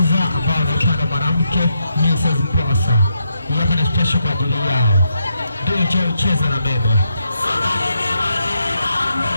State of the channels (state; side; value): inverted; both; correlation -0.81